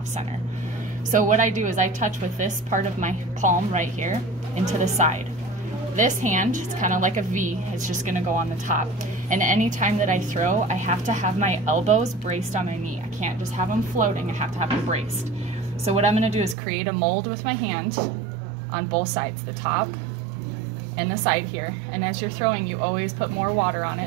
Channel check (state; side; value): drops out; left; at 16.6 s